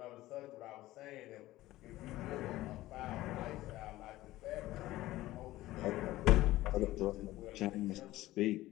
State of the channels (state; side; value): quieter; right; 16.6 dB